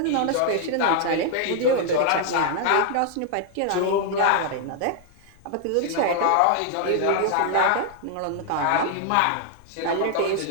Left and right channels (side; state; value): both; different; correlation 0.00